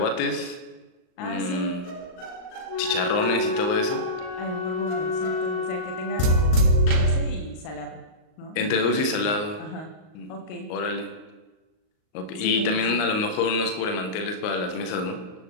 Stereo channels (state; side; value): late; right; 38 ms